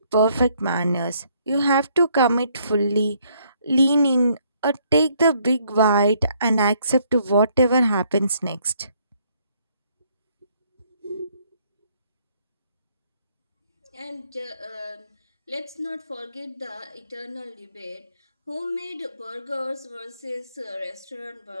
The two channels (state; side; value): inverted; both; correlation -0.68